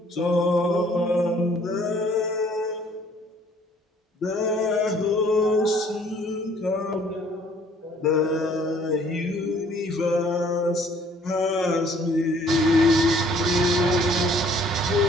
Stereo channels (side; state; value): both; normal; correlation 0.59